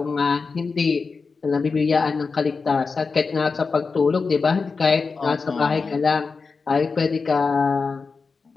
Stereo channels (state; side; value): quieter; right; 4.7 dB